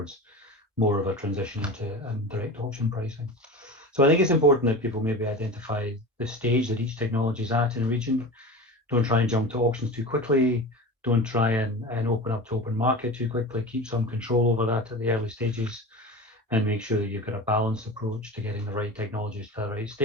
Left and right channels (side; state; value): both; normal; correlation 0.31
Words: more of a transition into direct auction pricing. So I think it's important that people maybe identify the stage that each technology is at in a region. Don't try and jump to auctions too quickly. Don't try and open up to open market too quickly. Keep some control over that at the early stages and make sure that you've got a balanced approach to getting the right technologies to the right